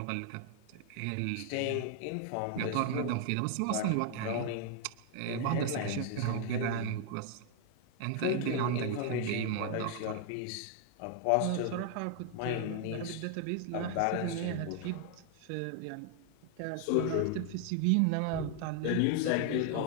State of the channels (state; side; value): different; both; correlation 0.00